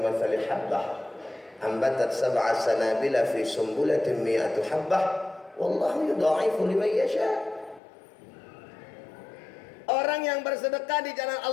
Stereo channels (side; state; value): right; drops out; at 7.8 s